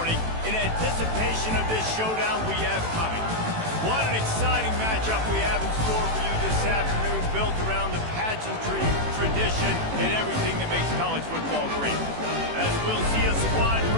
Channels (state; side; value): late; left; 18 ms